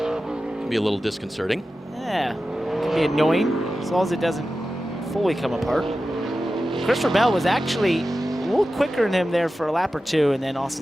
be a little disconcerting. Yeah, can be annoying as long as it doesn't fully come apart. Christopher Bell was actually a little quicker than him there for a lap or 2, and then Austin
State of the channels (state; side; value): normal; both; correlation 0.93